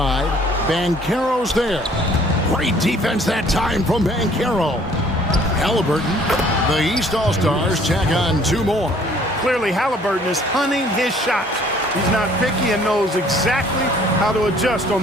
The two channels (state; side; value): normal; both; correlation 0.57